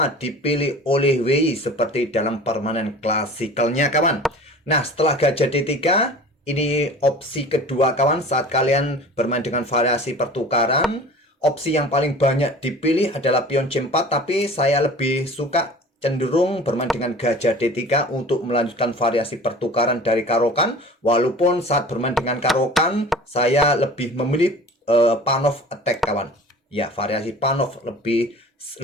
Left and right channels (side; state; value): both; normal; correlation 0.42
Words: dipilih oleh Wei seperti dalam permainan klasikalnya kawan. Nah, setelah gajah D3, ini opsi kedua kawan saat kalian bermain dengan variasi pertukaran. Opsi yang paling banyak dipilih adalah pion C4, tapi saya lebih suka cenderung bermain dengan gajah D3 untuk melanjutkan variasi pertukaran dari karokan. Walaupun saat bermain dengan karokan, saya lebih memilih Panov attack kawan. Ya, variasi Panov lebih